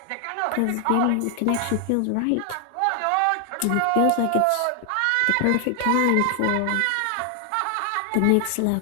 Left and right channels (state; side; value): different; both; correlation 0.00